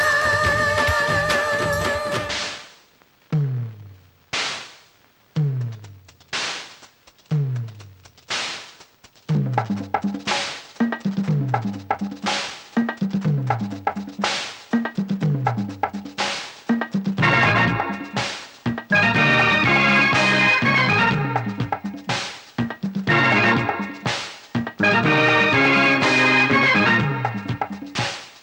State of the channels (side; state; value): both; identical; correlation 1.00